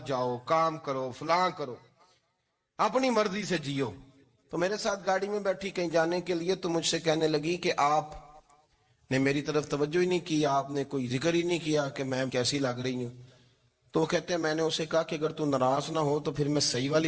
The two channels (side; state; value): both; identical; correlation 1.00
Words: جاؤ، کام کرو، فلاں کرو، اپنی مرضی سے جیو. تو میرے ساتھ گاڑی میں بیٹھی کہیں جانے کے لیے، تو مجھ سے کہنے لگی کہ آپ نے میری طرف توجہ ہی نہیں کی، آپ نے کوئی ذکر ہی نہیں کیا کہ میں کیسی لگ رہی ہوں. تو کہتے ہیں میں نے اسے کہا کہ اگر تو ناراض نہ ہو تو پھر میں صحیح